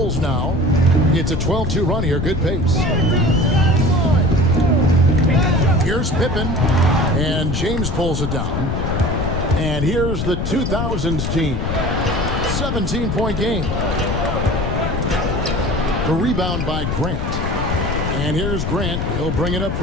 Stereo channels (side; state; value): left; noise; rumble, 2 dB below the sound